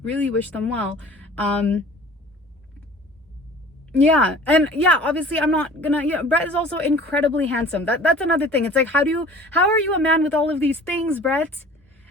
really wish them well. Yeah, and yeah, obviously I'm not gonna, yeah, Brett is also incredibly handsome. That's another thing. It's like, how are you a man with all of these things, Brett?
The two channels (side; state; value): both; normal; correlation 0.45